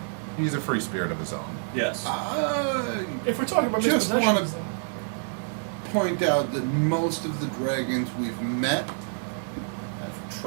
He's a free spirit of his own. Yes. If we're talking about Just mispossessions, wanna- then- Point out that most of the dragons we've met have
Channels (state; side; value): silent; left; digital silence